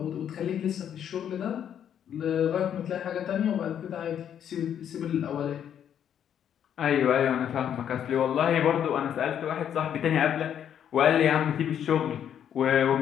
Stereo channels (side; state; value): right; quieter; 9.3 dB